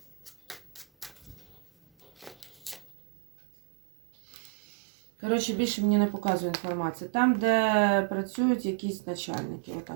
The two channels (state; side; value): drops out; left; at 3.0 s